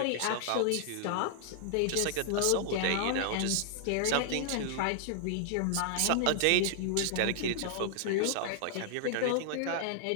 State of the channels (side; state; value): both; different; correlation 0.00